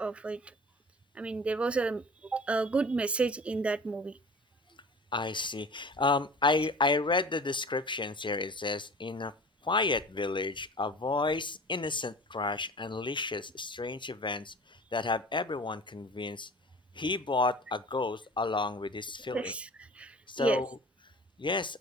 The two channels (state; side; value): normal; both; correlation 0.41